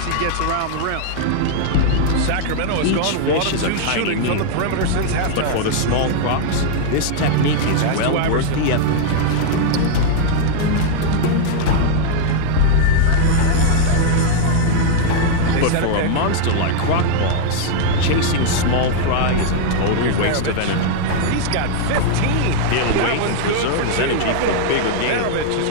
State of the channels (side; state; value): both; different; correlation 0.00